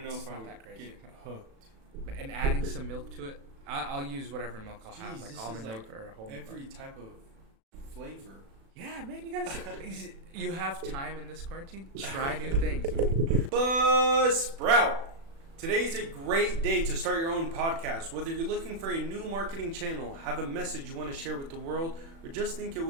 know it's if I not would that crazy. get hooked. And adding some milk to it. I'll use whatever milk I'll have, Jeez, like this almond is milk like or whole every milk. type of flavor. Yeah, man, you gotta. You have time in this quarantine. Try new things. Buzzsprout. Today's a great day to start your own podcast. Whether you're looking for a new marketing channel, have a message you want to share with the world, or just think it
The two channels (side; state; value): left; late; 36 ms